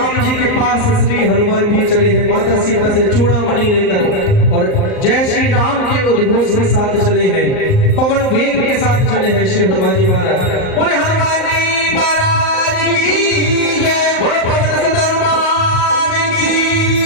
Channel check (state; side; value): late; right; 38 ms